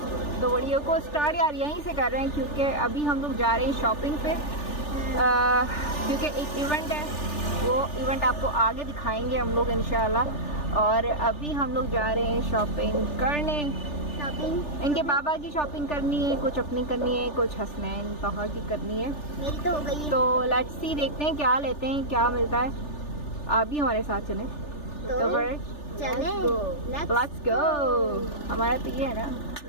तो वीडियो को स्टार्ट यार यहीं से कर रहे हैं क्योंकि अभी हम लोग जा रहे हैं शॉपिंग पे, क्योंकि एक इवेंट है, वो इवेंट आपको आगे दिखाएंगे हम लोग इंशाल्लाह। और अभी हम लोग जा रहे हैं शॉपिंग करने। इनके बाबा की शॉपिंग करनी है, कुछ अपनी करनी है, कुछ हसनैन तोहा की करनी है। मेरी तो हो गई है। तो लेट्स सी, देखते हैं क्या लेते हैं, क्या मिलता है। आप भी हमारे साथ चलें तो चले लेट्स गो। हमारा तो ये है ना,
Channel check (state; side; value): late; right; 3.4 ms